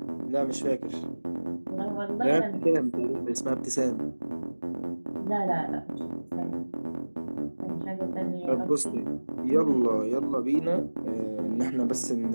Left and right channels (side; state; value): both; inverted; correlation -1.00